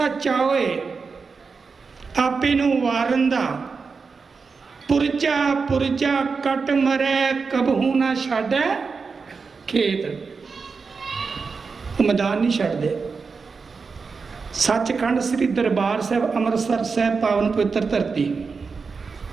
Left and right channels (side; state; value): left; quieter; 4.9 dB